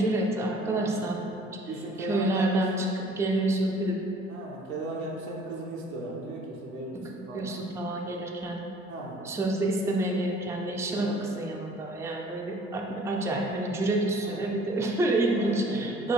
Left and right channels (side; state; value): both; normal; correlation 0.54